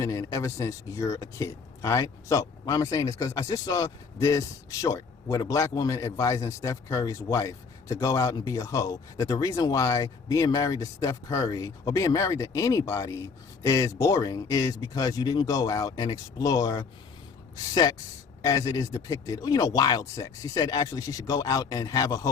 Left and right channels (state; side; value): quieter; right; 5.2 dB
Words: in ever since you're a kid. All right, so why am I saying this? Because I just saw this short with a black woman advising Steph Curry's wife to go out and be a hoe. That the reason why being married to Steph Curry or being married to anybody is boring is because you didn't go out and explore sex as it is depicted, wild sex. She said actually she should go out and have a